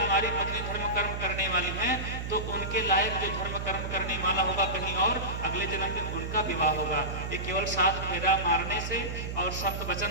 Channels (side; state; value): right; noise; hum, 5 dB below the sound